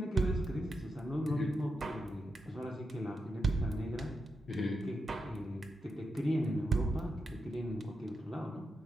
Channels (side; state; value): both; normal; correlation 0.87